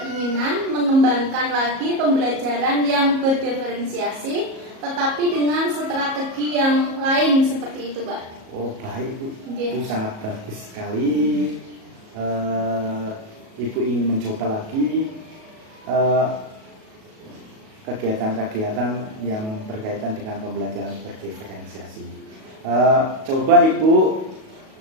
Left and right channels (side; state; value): left; late; 37 ms